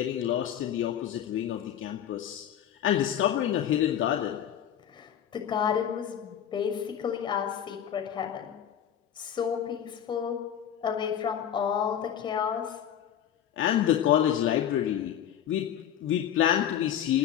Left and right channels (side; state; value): right; quieter; 9.9 dB